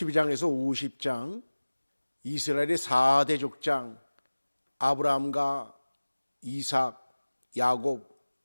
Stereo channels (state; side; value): inverted; both; correlation -1.00